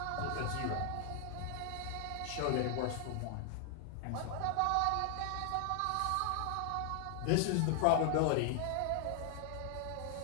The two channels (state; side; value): different; both; correlation 0.00